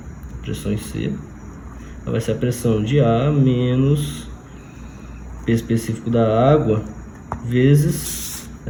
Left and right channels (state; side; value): identical; both; correlation 1.00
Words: a pressão em C. Ela vai ser a pressão de A menos P específico da água vezes